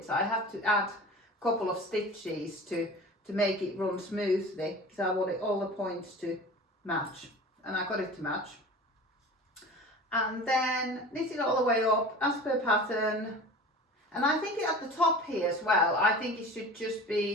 I have to add a couple of stitches to make it run smoothly, because I wanted all the points to match, and I got it to match. And then knit it all the way up as per pattern. And I think at the top here as well, I think it should just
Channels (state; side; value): normal; both; correlation 0.37